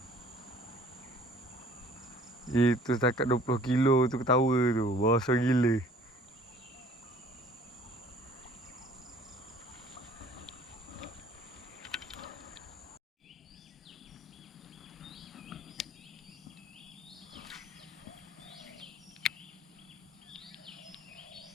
Itu setakat 20 kilo tu ketawa tu. Besar gila.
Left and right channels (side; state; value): both; normal; correlation 0.53